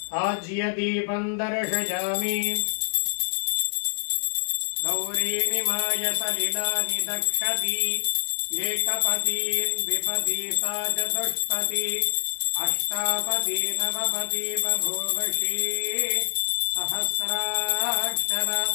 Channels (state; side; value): silent; right; digital silence